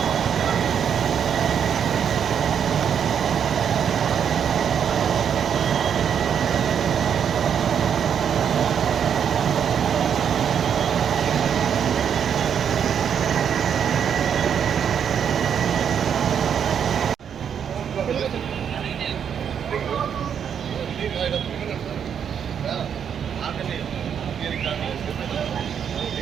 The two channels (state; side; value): quieter; left; 8.0 dB